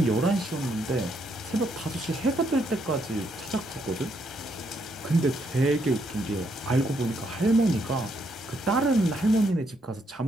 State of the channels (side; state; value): both; normal; correlation 0.75